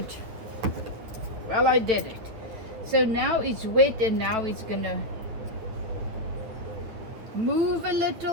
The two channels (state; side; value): late; left; 9.5 ms